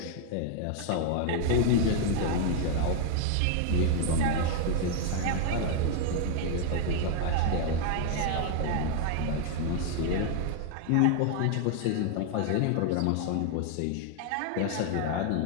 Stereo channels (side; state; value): both; different; correlation 0.00